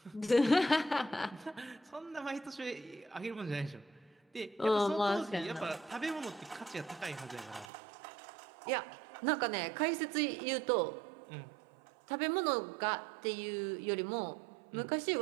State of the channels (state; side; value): drops out; left; at 7.7 s